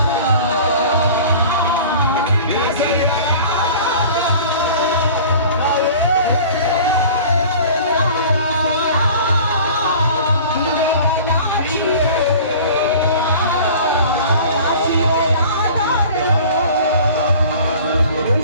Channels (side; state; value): both; inverted; correlation -0.43